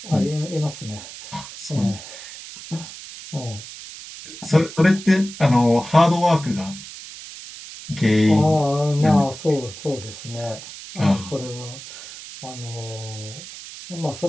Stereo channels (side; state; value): right; noise; hiss, 14 dB below the sound